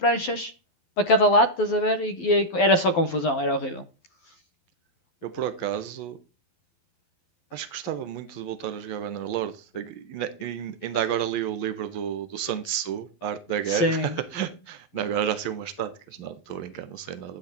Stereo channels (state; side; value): late; right; 12 ms